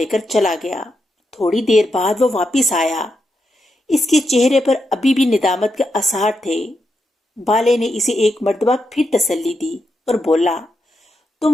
کر چلا گیا۔ تھوڑی دیر بعد وہ واپس آیا۔ اس کے چہرے پر ابھی بھی ندامت کے آثار تھے۔ بالے نے اسے ایک مرتبہ پھر تسلی دی اور بولا،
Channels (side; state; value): both; normal; correlation 0.84